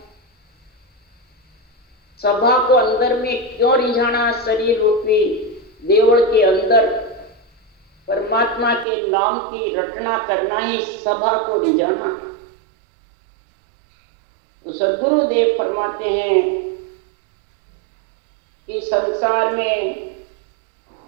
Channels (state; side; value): drops out; left; at 8.8 s